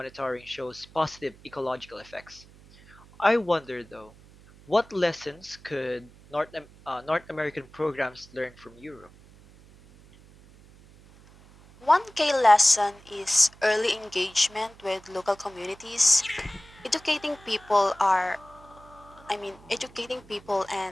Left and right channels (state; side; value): noise; right; hum, 24 dB below the sound